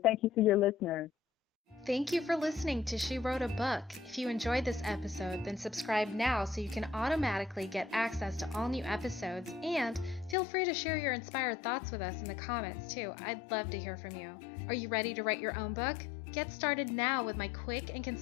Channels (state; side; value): drops out; right; at 10.4 s